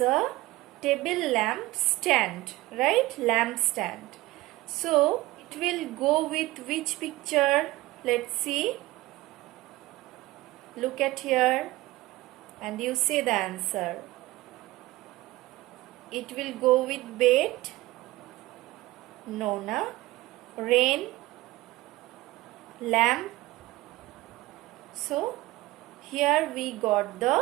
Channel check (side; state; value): left; quieter; 18.7 dB